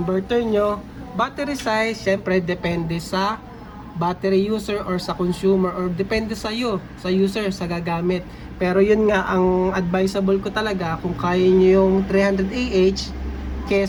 inverter nyo. Battery size, syempre depende sa battery user or sa consumer or depende sa iyo, sa user, sa gagamit. Pero yun nga, ang advisable ko talaga, kung kaya nyo yung 300 AH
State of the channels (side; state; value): both; identical; correlation 1.00